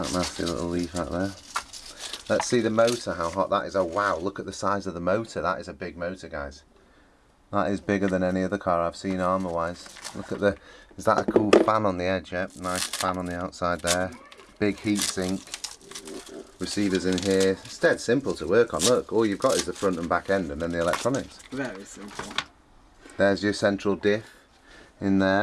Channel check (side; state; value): both; identical; correlation 1.00